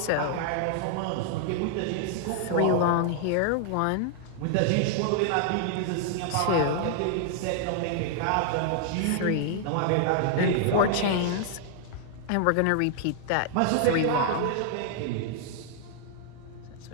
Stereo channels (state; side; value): different; both; correlation 0.00